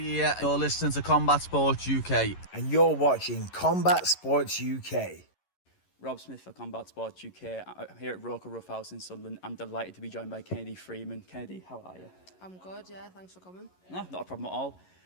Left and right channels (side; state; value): right; late; 11 ms